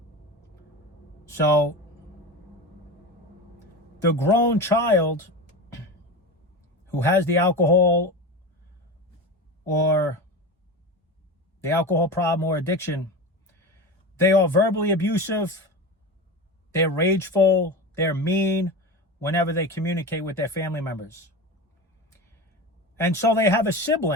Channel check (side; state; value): both; normal; correlation 0.26